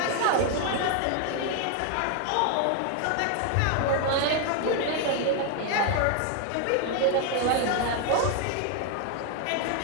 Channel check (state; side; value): different; both; correlation 0.00